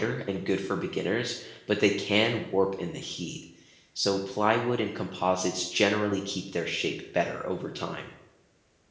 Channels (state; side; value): identical; both; correlation 1.00